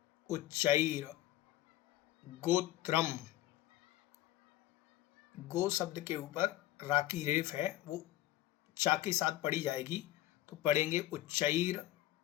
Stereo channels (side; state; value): right; quieter; 14.9 dB